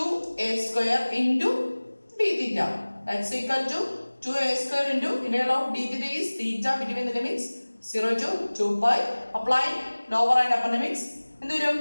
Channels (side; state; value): both; inverted; correlation -1.00